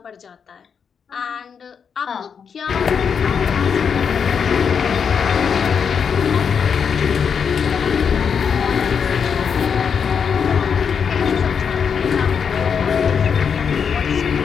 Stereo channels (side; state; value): right; quieter; 6.7 dB